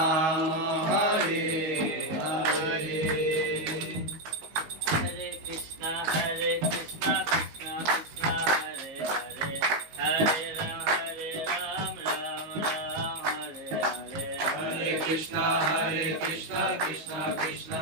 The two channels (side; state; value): left; late; 19 ms